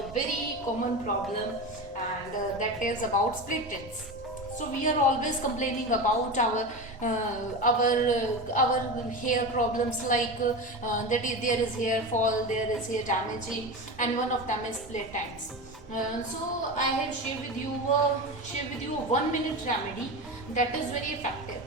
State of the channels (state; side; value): normal; both; correlation 0.24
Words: very common problem, and that is about split ends. So we are always complaining about our hair problems, like there is hair fall, there is hair damaging, and one of them is split ends. So I have shared with you a 1 minute remedy that is very effective,